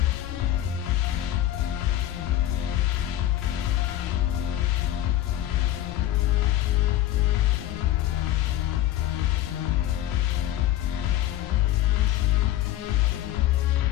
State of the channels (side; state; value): right; quieter; 13.1 dB